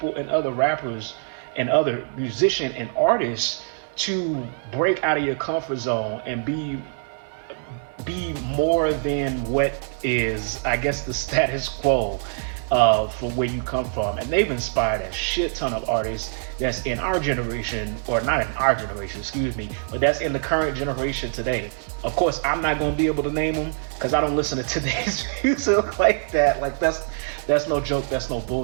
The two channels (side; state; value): left; silent; 62 dB below the other